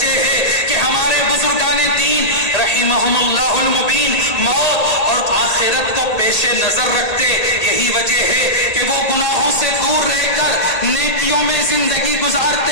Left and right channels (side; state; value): right; late; 1.8 ms